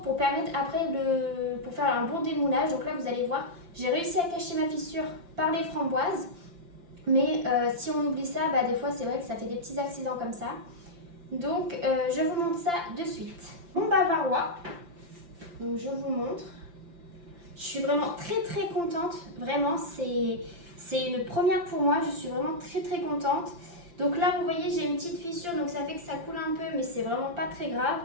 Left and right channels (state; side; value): late; left; 5.8 ms